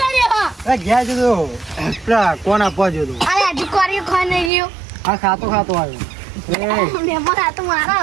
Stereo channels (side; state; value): left; drops out; at 4.5 s